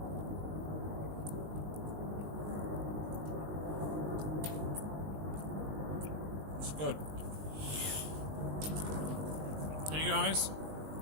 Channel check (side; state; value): left; late; 19 ms